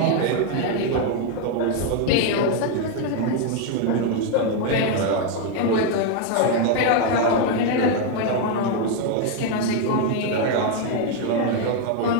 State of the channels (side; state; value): both; different; correlation 0.01